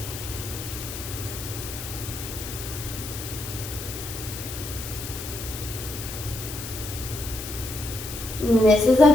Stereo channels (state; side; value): noise; left; hiss, 9 dB below the sound